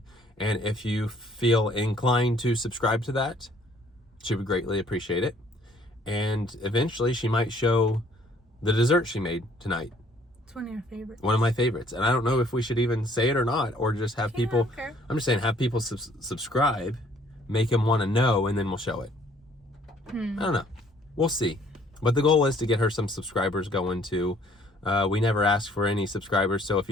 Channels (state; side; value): normal; both; correlation 0.60